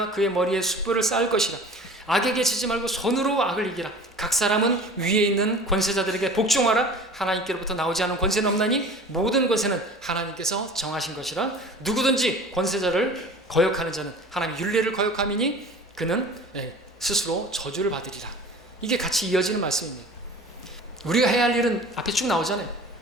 그의 머리에 숯불을 쌓을 것이라. 악에게 지지 말고 손으로 악을 이기라. 각 사람은 위에 있는 권세자들에게 복종하라. 하나님께로부터 나오지 않은 권세는 없나니 모든 권세는 하나님께서 정하신 것이라. 누구든지 권세자를 거역하는 자는 하나님의 율례를 거역함이니 그는 스스로 저주를 받으리라. 이게 같이 이어지는 말씀입니다. 우리가 해야 할 일은 앞에 쭉 나오잖아요.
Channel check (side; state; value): both; normal; correlation 0.41